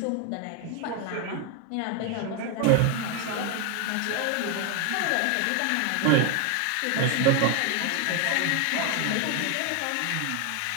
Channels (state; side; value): different; both; correlation 0.01